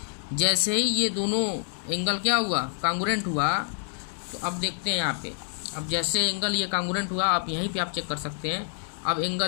जैसे ही ये दोनों एंगल क्या हुआ, कॉन्ग्रुएंट हुआ, तो अब देखते हैं यहाँ पे, अब जैसे एंगल ये कॉन्ग्रुएंट हुआ, आप यहीं पे आप चेक कर सकते हैं। अब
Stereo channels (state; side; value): silent; right; digital silence